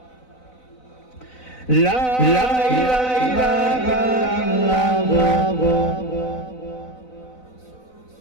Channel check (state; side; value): late; right; 4.0 ms